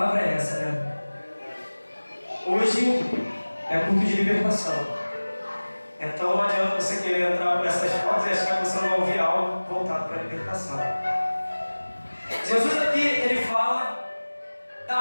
é essa, né? Hoje é culto de libertação. Então não adianta você querer entrar por essas portas e achar que você não vai ouvir algo voltado para a libertação. Jesus aqui, ele fala da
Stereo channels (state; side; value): inverted; both; correlation -1.00